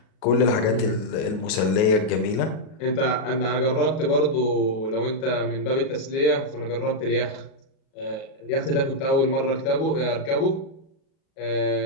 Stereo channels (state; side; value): late; right; 38 ms